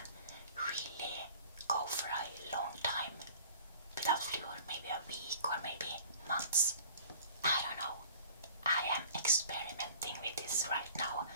really go for a long time without fluor, maybe a week or maybe months. I don't know. I am experimenting with this right now,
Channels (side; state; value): both; inverted; correlation -0.48